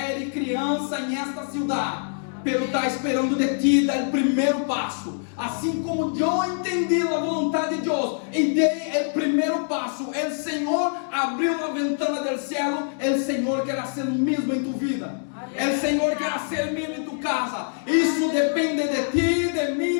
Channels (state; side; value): silent; right; digital silence